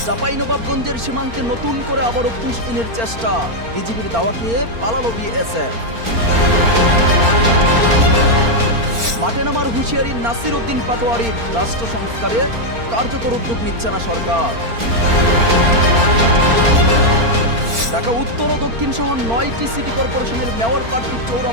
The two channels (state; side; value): late; left; 4.4 ms